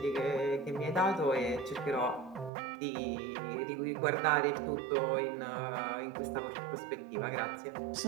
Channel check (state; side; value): drops out; left; at 2.5 s